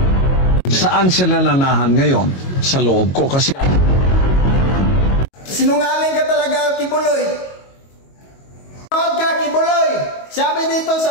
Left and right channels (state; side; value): late; right; 22 ms